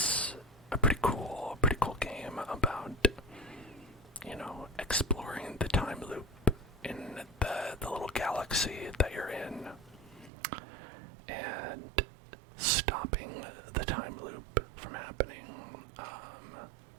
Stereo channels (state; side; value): drops out; left; at 10.3 s